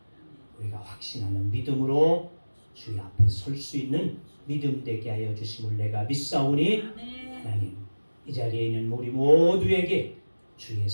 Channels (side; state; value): both; inverted; correlation -1.00